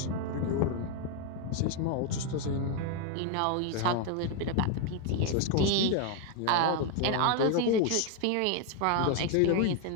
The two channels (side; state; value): both; different; correlation 0.01